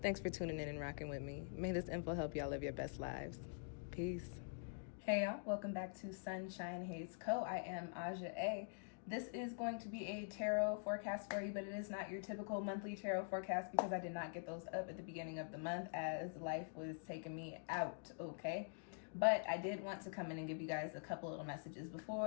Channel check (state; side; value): silent; right; digital silence